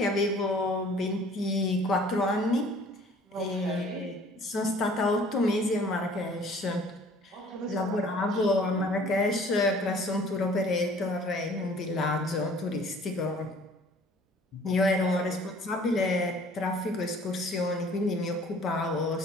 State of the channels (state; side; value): normal; both; correlation 0.53